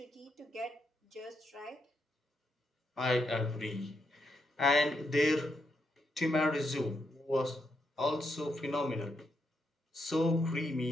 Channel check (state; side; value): normal; both; correlation 0.81